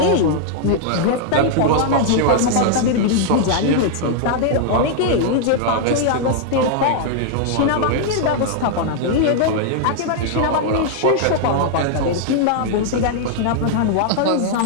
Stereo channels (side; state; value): both; different; correlation 0.00